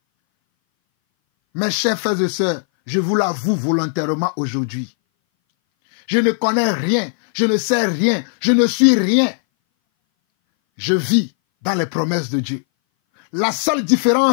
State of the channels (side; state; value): right; silent; 61 dB below the other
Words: Mes chers frères et sœurs, je vous l'avoue volontairement aujourd'hui. Je ne connais rien, je ne sais rien, je ne suis rien. Je vis dans les promesses de Dieu. La seule